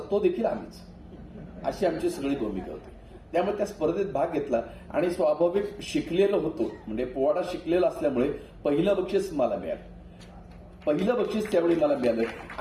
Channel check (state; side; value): identical; both; correlation 1.00